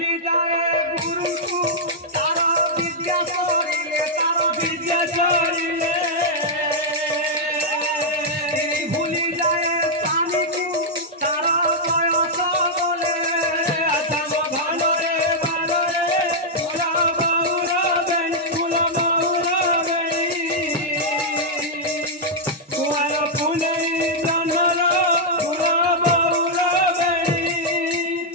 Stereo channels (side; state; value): both; normal; correlation -0.06